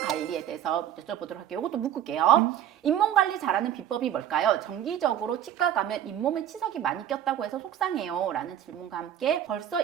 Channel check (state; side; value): quieter; left; 10.6 dB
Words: 관리에 대해서 여쭤보도록 할게요. 이것도 묶을게요. 잇몸 관리 잘하는 비법이 뭘까요? 정기적으로 치과 가면 잇몸에 치석이 많이 꼈다고 해서 속상해요. 라는 질문과 함께 벌써